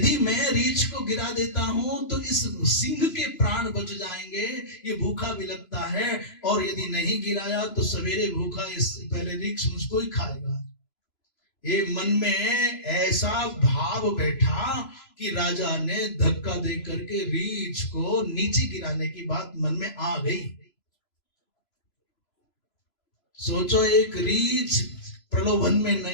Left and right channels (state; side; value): late; right; 3.0 ms